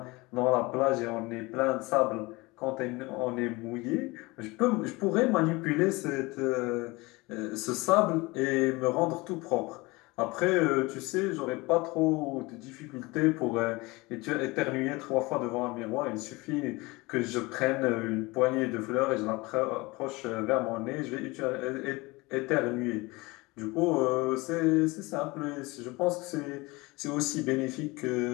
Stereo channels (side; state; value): right; quieter; 23.4 dB